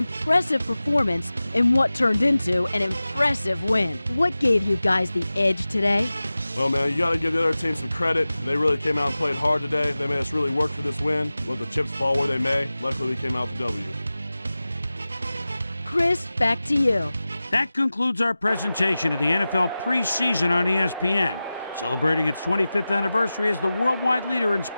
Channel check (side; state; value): both; inverted; correlation -0.96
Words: performance in what turned into an impressive win. What gave you guys the edge today? Well, man, you got to give the other team some credit. They really came out and played hard today. They made us really work for this win. Let the chips fall where they may. Luckily, we came out with the W. Chris, back to you. That concludes our presentation of the NFL preseason on ESPN, celebrating its 25th anniversary as the worldwide leader in